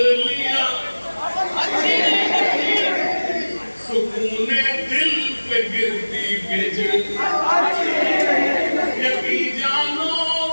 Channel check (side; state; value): both; inverted; correlation -1.00